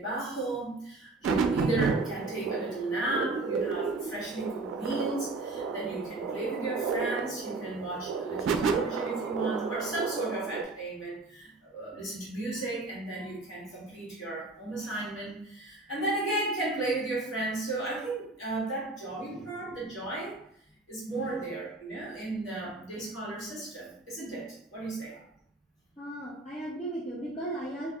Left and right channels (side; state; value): left; quieter; 3.1 dB